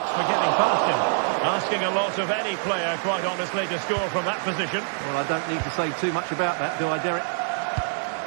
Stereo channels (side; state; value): left; silent; 62 dB below the other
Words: for getting past him. Asking a lot of any player, quite honestly, to score from that position. Well, I don't need to say too much about that, do I, Derek?